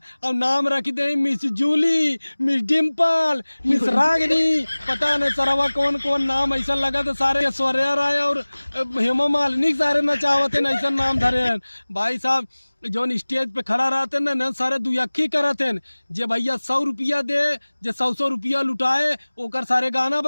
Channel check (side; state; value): both; inverted; correlation -1.00